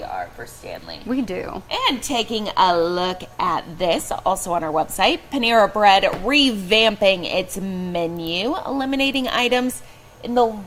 for Stanley. We do. And taking a look at this, also on our website, Panera Bread revamping its menu, eliminating items in the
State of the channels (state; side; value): identical; both; correlation 1.00